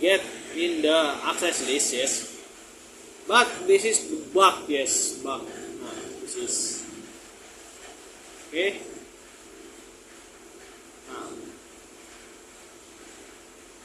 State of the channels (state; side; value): identical; both; correlation 1.00